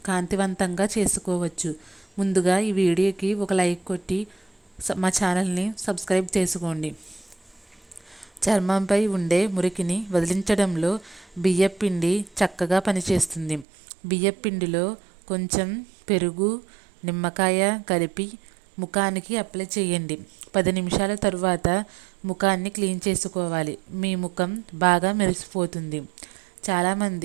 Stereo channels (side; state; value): left; drops out; at 13.7 s